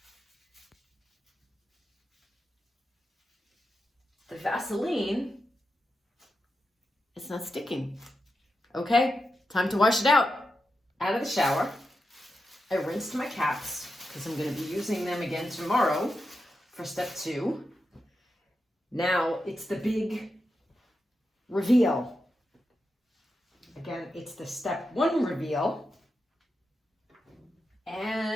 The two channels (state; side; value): normal; both; correlation 0.88